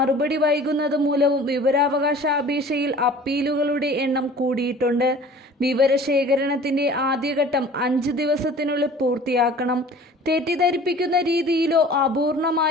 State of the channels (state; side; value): normal; both; correlation 0.45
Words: വൈകുന്നത് മൂലവും വിവരാവകാശ അപേക്ഷയിൽ അപ്പീലുകളുടെ എണ്ണം കൂടിയിട്ടുണ്ട്. വിവരശേഖരണത്തിന്റെ ആദ്യഘട്ടം 5 ദിവസത്തിനുള്ളിൽ പൂർത്തിയാക്കണം. തെറ്റിദ്ധരിപ്പിക്കുന്ന രീതിയിലോ